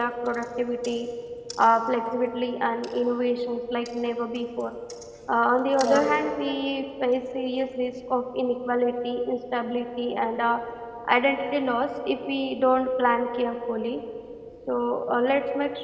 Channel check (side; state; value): both; identical; correlation 1.00